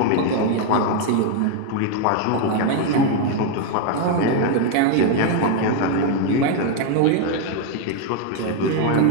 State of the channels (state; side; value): different; both; correlation 0.01